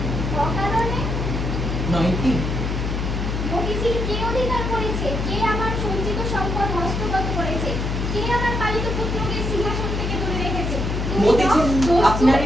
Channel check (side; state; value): left; noise; hum, 1 dB below the sound